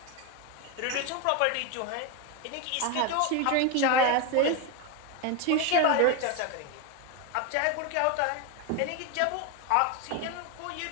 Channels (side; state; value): both; different; correlation 0.02